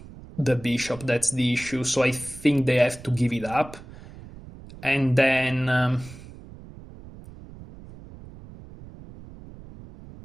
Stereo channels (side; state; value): right; noise; rumble, 17 dB below the sound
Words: bishop. That's the issue. So I think they have to give it up, and then